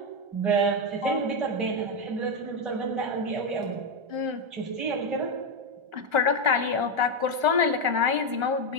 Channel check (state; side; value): late; left; 1.3 ms